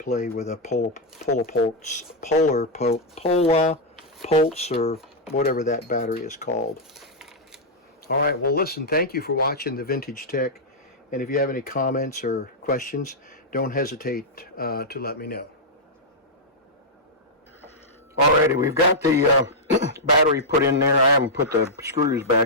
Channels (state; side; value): normal; both; correlation -0.07